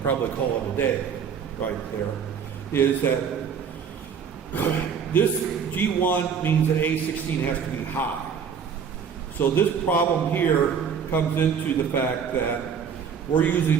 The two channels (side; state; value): left; quieter; 6.9 dB